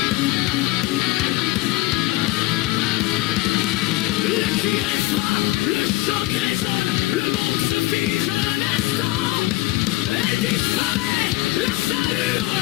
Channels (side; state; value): right; quieter; 19.3 dB